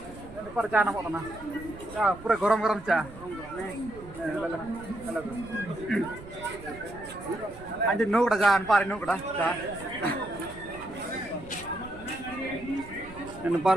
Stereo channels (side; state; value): right; noise; rumble, 17 dB below the sound